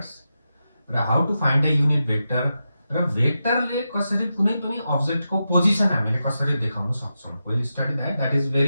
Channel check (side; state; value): both; inverted; correlation -0.89